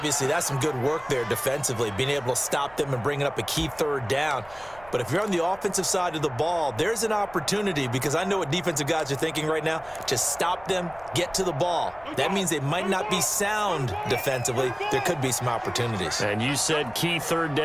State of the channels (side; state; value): right; noise; rumble, 23 dB below the sound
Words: that's some good work there defensively, being able to stop them and bringing up a key 3rd down. But if you're on the offensive side of the ball, there's an opportunity, because I know what defensive guys are thinking right now. Just stop them, get to the ball. That means they might not be sound defensively. There could be some opportunities. And you said key 3rd